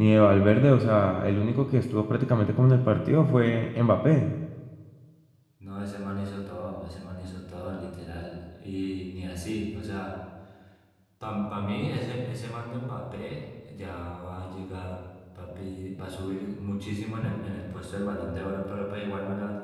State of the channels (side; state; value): both; identical; correlation 1.00